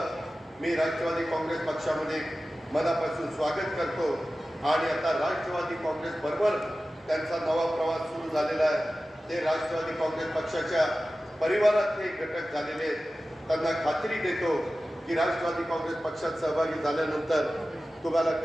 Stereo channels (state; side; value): normal; both; correlation 0.95